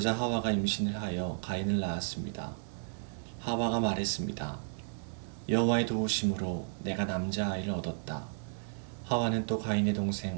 하와가 임신을 하여 가인을 낳았습니다. 하와가 말했습니다. 여호와의 도우심으로 내가 남자아이를 얻었다. 하와는 또 가인의 동생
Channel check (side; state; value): left; silent; digital silence